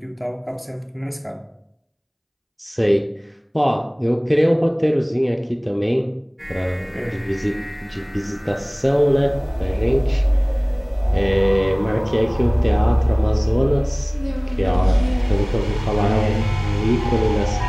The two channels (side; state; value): both; identical; correlation 1.00